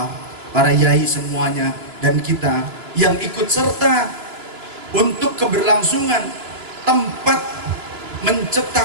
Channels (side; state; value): left; late; 3.0 ms